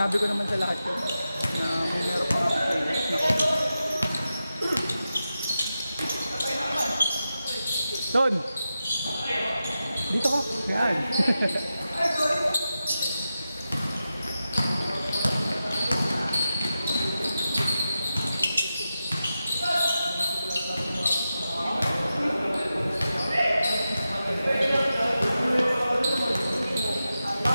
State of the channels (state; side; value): inverted; both; correlation -0.91